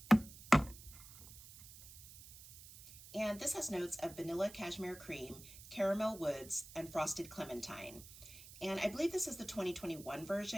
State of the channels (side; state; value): right; noise; hiss, 17 dB below the sound